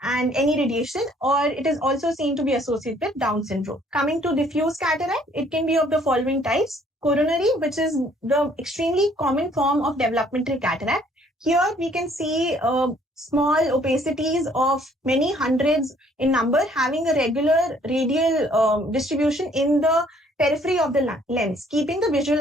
and any radiation, or it is also seen to be associated with Down syndrome. Coming to diffuse cataract, it can be of the following types: coronary, which is the extremely common form of developmental cataract. Here we can see small opacities of many hundreds in number having a regular radial distribution in the periphery of the lens, keeping the visual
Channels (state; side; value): normal; both; correlation 0.61